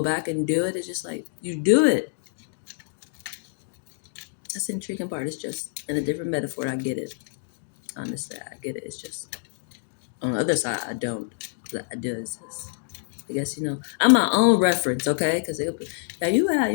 back and do it, it's just like, you do it. That's the intriguing part. It's just in a different metaphor. I get it. Honestly, I get it. It's just on the other side, I don't. But I do. It's just, I guess, I'm my own reference, okay? Because now you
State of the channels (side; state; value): right; silent; digital silence